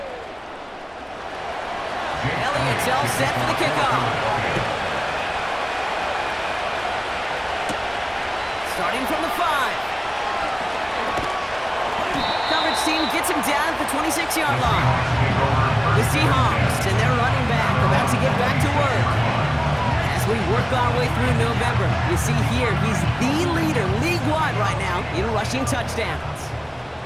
Elliott's all set for the kickoff. Starting from the 5. Coverage team gets him down at the 26-yard line. The Seahawks and their running back about to get back to work. As we work our way through November, you see here he's the leader league-wide right now in rushing touchdowns.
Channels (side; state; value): both; identical; correlation 1.00